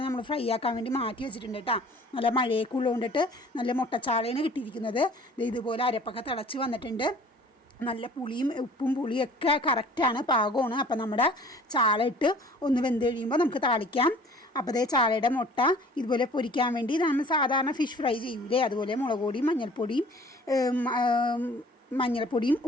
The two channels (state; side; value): normal; both; correlation 0.50